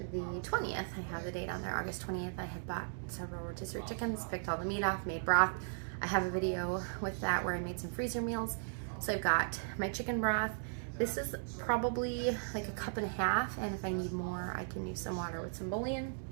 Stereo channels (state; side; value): silent; left; digital silence